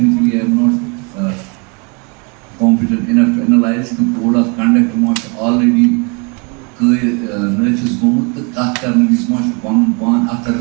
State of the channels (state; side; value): quieter; left; 32.7 dB